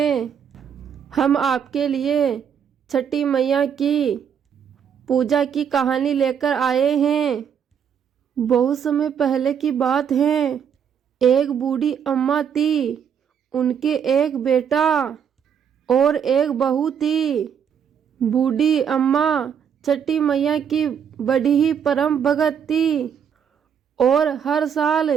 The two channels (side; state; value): left; quieter; 7.9 dB